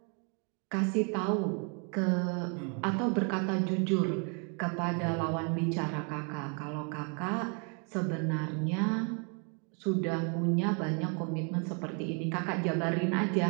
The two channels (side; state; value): left; quieter; 37.7 dB